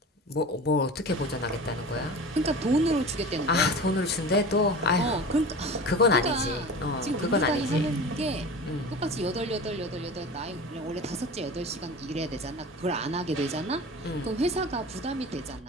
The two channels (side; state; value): both; normal; correlation 0.34